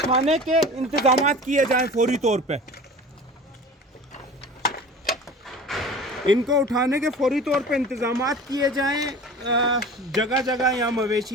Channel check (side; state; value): both; normal; correlation 0.39